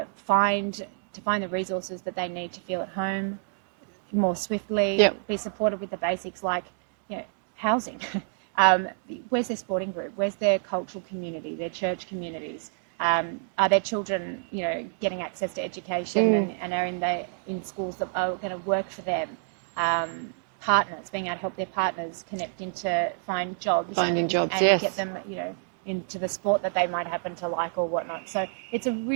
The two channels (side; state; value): left; silent; digital silence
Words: find the resources that they need to feel at home more swiftly, be supported with the basics like housing. Where's their sporting group? Where's their cultural community, their church communities? Are their children, getting access to education and are in schools that are going to work for them? Partners, being able to help their partners connect into find jobs and yes. get them, into the sport that they might happen to like or whatnot. So it's a